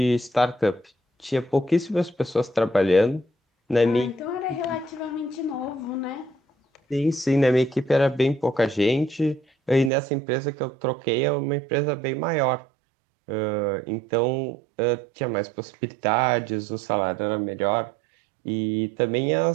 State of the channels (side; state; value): left; drops out; at 9.9 s